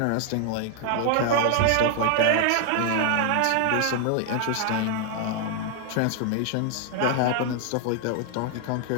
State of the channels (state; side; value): different; both; correlation 0.00